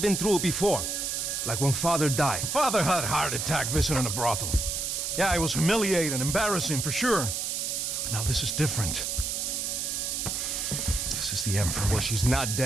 been through it before. Like when Father died. Father had a heart attack visiting a brothel. Yeah, it was humiliating, embarrassing, for sure. But now this is different. This is the end for me. Well, she's not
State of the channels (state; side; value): noise; right; hiss, 2 dB below the sound